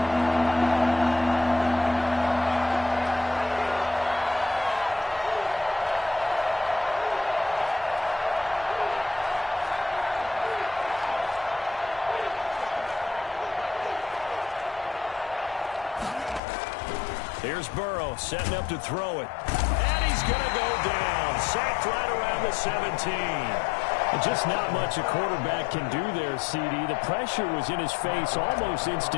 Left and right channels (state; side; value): drops out; right; at 16.4 s